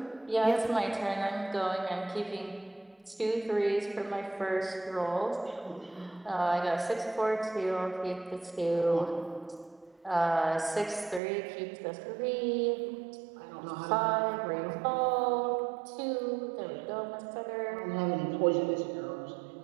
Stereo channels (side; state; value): left; drops out; at 11.2 s